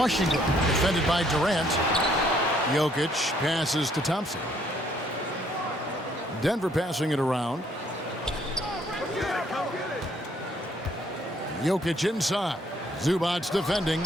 defended by Durant. Jokic passes to Thompson. Denver passing it around. Jokic inside. Zubac's defending.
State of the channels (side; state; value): both; normal; correlation 0.66